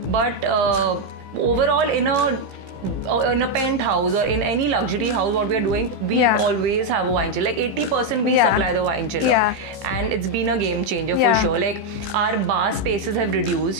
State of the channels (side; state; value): left; late; 15 ms